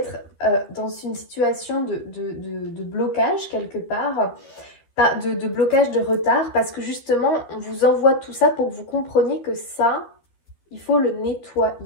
dans une situation de blocage, quelque part, de blocage, de retard, parce que justement, on vous envoie tout ça pour que vous compreniez que ça, il faut le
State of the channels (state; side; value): late; right; 12 ms